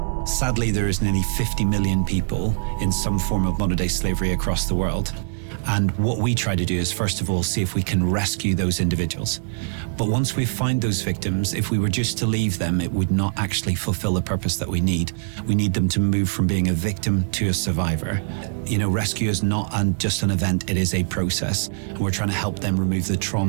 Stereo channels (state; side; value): silent; left; digital silence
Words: Sadly, there is nearly 50 million people in some form of modern-day slavery across the world. And what we try to do is, first of all, see if we can rescue those individuals. But once we find those victims, if we were just to leave them, it would not actually fulfill the purpose that we need. We need them to move from being a victim to a survivor. You know, rescue is not just an event, it is a process. And we're trying to help them remove the